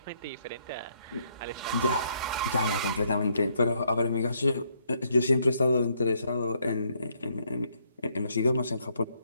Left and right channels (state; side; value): inverted; both; correlation -0.72